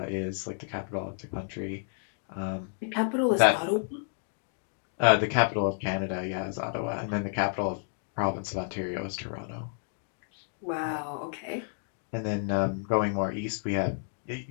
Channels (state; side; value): silent; right; digital silence